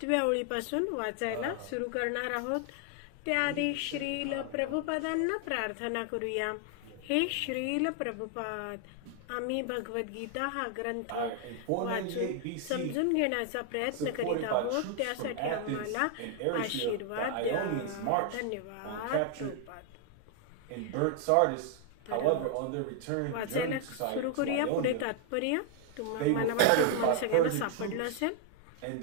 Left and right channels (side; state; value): both; different; correlation 0.00